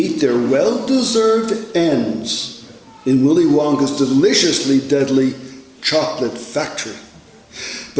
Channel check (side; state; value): both; identical; correlation 1.00